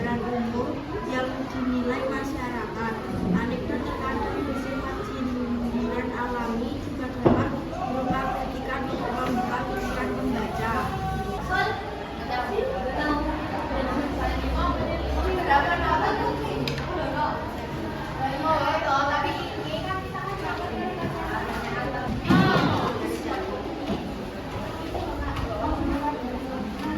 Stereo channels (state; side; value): identical; both; correlation 1.00